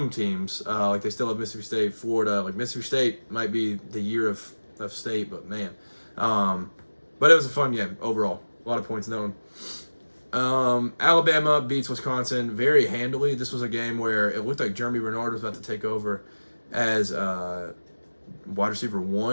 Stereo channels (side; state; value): both; inverted; correlation -1.00